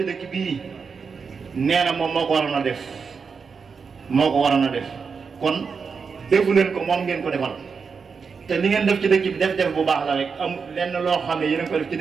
dëkk bii nee na moom moo ko waroon a def kon defu leen ko moom ngeen ko defal te li ngeen def ci dëkk bi def bu baax la rek am lenn loo xam ne yéen a ko def ci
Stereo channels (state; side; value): quieter; left; 5.5 dB